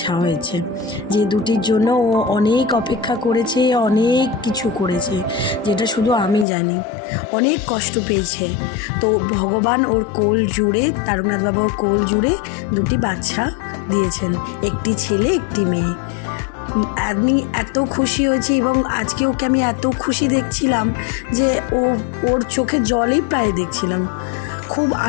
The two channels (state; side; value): drops out; right; at 6.5 s